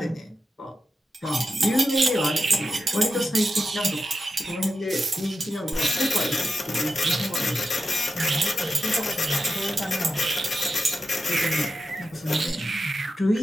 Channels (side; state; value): both; normal; correlation 0.89